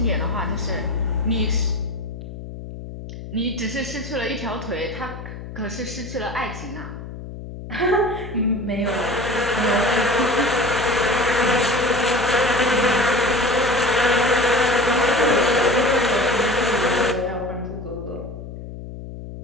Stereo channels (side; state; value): left; noise; hum, 11 dB below the sound